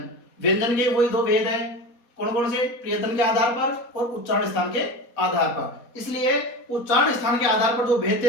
व्यंजन के वही दो भेद है, कौन कौन से? प्रयत्न के आधार पर और उच्चारण स्थान के आधार पर। इसलिए उच्चारण स्थान के आधार पर जो भेद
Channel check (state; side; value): late; right; 4.2 ms